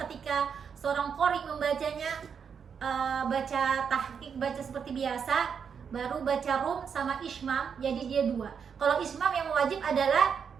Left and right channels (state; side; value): quieter; left; 6.8 dB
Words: ketika seorang qori membacanya baca tahqiq, baca seperti biasa, baru baca rum sama ismam, jadi dia 2. Kalau ismam yang wajib adalah